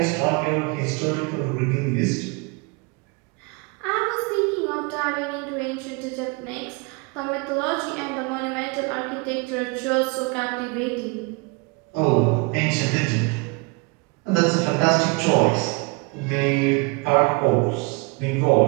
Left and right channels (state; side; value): quieter; left; 29.4 dB